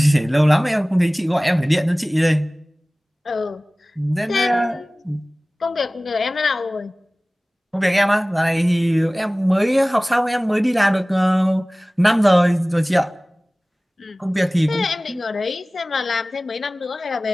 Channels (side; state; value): both; normal; correlation 0.98